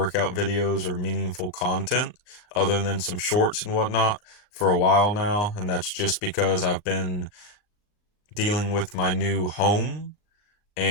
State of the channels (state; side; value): late; right; 39 ms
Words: videos or meaningful content other than some shorts and whatnot for a while now, and that's just because I've been dealing with my new home